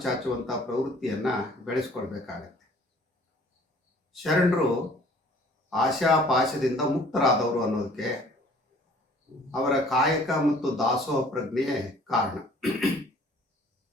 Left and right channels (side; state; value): both; normal; correlation 0.54